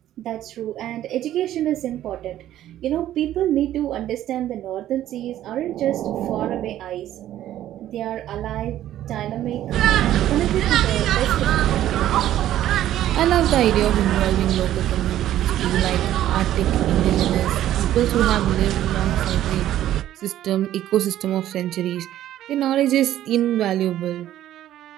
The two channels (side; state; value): left; quieter; 12.6 dB